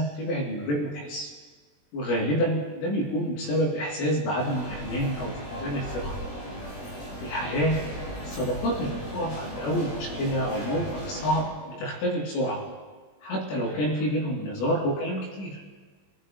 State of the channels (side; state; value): right; late; 20 ms